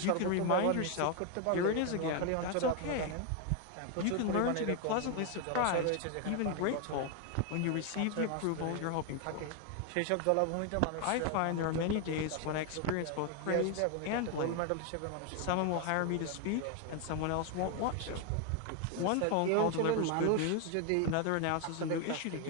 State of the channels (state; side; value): different; both; correlation 0.01